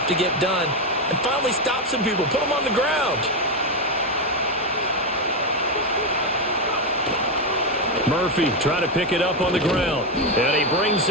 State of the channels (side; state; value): both; normal; correlation 0.08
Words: to get done, and finally stop some people, put them on the ground. Murphy trying to pick it up on the ground. And he brings